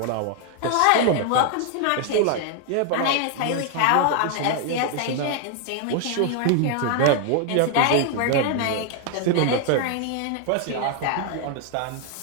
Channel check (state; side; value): different; both; correlation 0.00